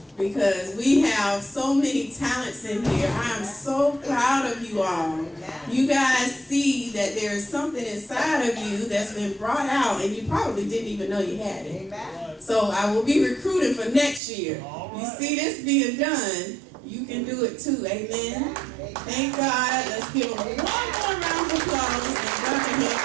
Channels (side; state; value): left; drops out; at 14.2 s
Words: Because we have so many talents in here. I am so proud of you all. You guys see that there is something inside of you that's been brought out and you probably didn't even know you had it. So I will be recruiting for next year. You see this being done, you can do it too. Amen. Thank God. Let's give them one more round of applause and God can help